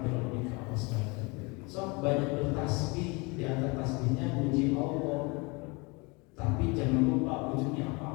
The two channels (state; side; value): quieter; right; 28.0 dB